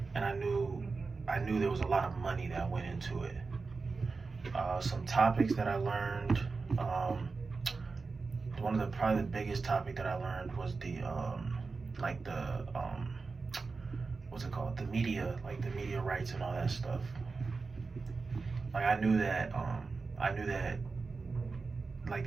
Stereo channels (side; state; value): left; quieter; 4.3 dB